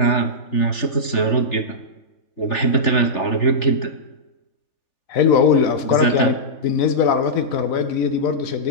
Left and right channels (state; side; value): late; right; 3.4 ms